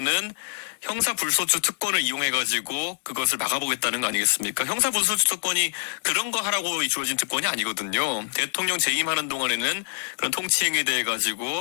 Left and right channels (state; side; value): silent; right; digital silence